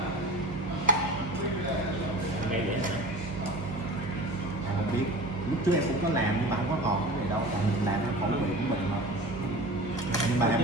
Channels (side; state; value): right; noise; hum, 11 dB below the sound